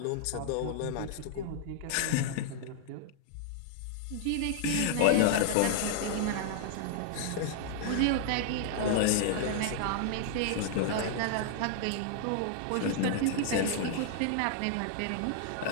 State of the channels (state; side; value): different; both; correlation -0.01